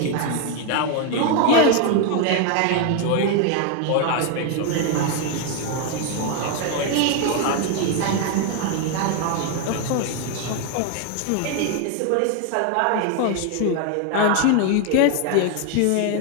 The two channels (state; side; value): different; both; correlation 0.01